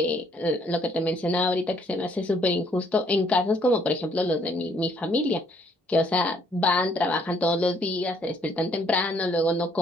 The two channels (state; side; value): normal; both; correlation 0.66